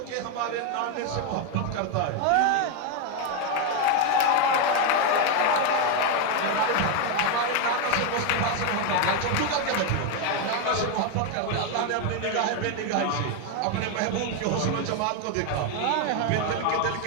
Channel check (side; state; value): both; different; correlation 0.02